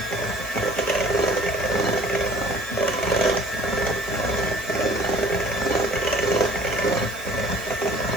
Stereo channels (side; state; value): left; noise; hiss, 17 dB below the sound